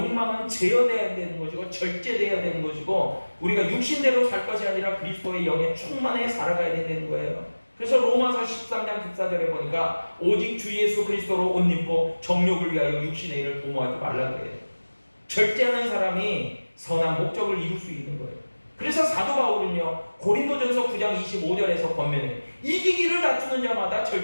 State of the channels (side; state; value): both; inverted; correlation -1.00